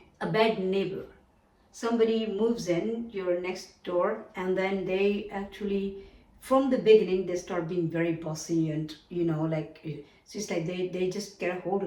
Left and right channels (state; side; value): identical; both; correlation 1.00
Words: a bad neighbor? Somebody moves in your next door, and then they actually, from the beginning, they start being very bossy, and it's just like they just get a hold